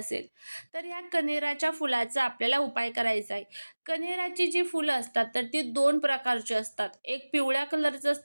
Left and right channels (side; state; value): both; inverted; correlation -1.00